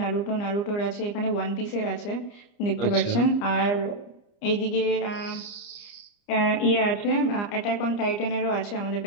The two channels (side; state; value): right; late; 29 ms